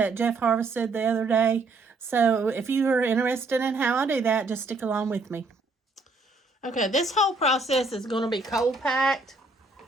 Jeff harvested the other day. So if you are interested in how I do that, just stick along with me. Okay, this whole process is going to be cold packed.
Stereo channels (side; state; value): left; quieter; 3.5 dB